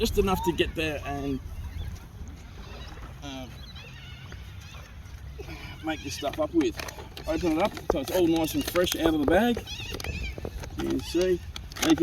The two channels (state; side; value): identical; both; correlation 1.00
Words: enough to get there and make this stuff up with. Open it up so it's all nice and fresh out of the bag. You can see. And if